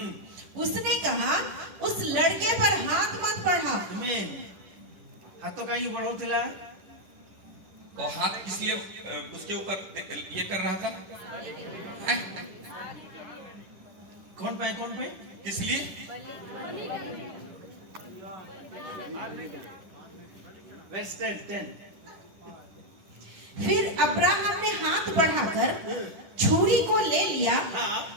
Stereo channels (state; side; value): late; left; 10 ms